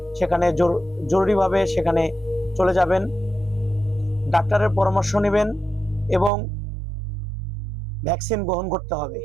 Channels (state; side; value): drops out; left; at 6.3 s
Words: সেখানে জরুরিভাবে সেখানে চলে যাবেন, ডাক্তারের পরামর্শ নেবেন এবং ভ্যাকসিন গ্রহণ করতে হবে।